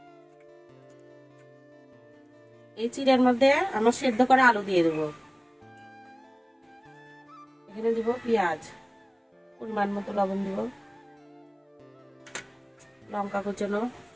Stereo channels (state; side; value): identical; both; correlation 1.00